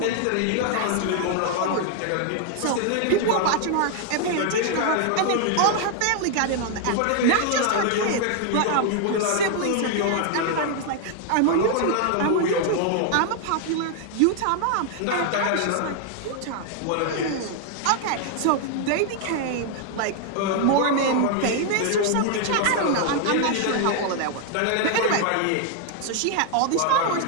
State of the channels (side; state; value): both; different; correlation 0.00